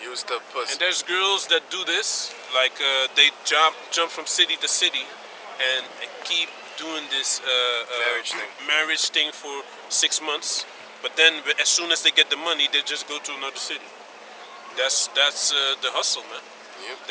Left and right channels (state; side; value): identical; both; correlation 1.00